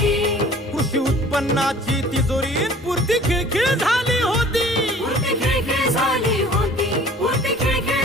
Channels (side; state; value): both; normal; correlation 0.49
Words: कृषी उत्पन्नाची तिजोरी पुरती खिळखिळ झाली होती, पुरती खिळखिळ झाली होती, पुरती